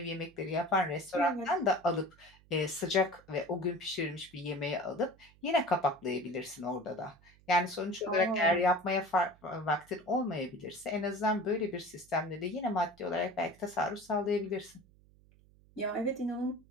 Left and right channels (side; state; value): right; noise; hum, 28 dB below the sound